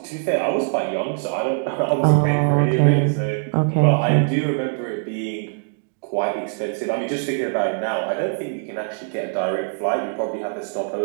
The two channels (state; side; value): silent; left; digital silence